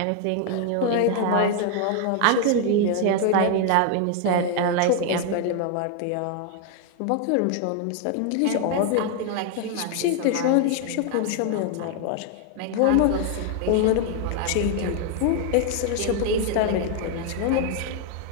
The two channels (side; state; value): both; different; correlation 0.00